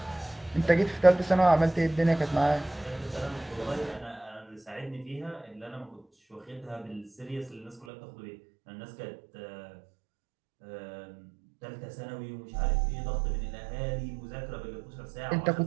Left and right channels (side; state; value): left; drops out; at 7.9 s